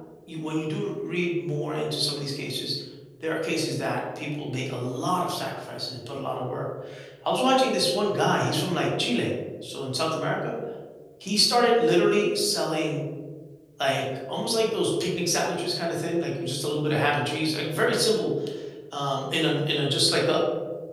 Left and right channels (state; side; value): identical; both; correlation 1.00